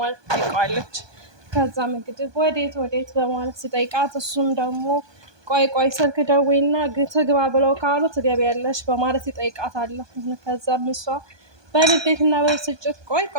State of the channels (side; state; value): left; late; 1.2 ms